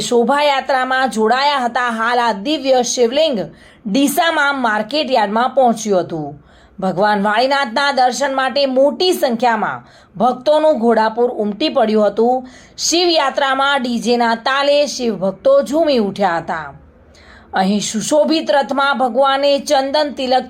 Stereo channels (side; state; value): both; identical; correlation 1.00